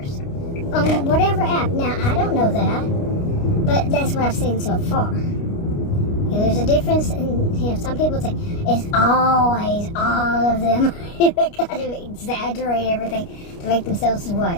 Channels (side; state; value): right; late; 29 ms